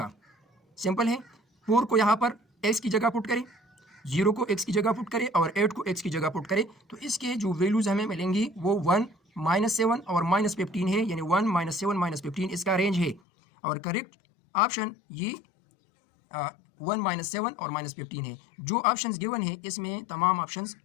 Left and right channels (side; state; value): right; drops out; at 13.2 s